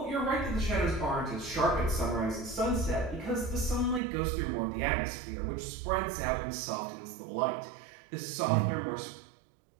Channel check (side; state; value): left; drops out; at 4.0 s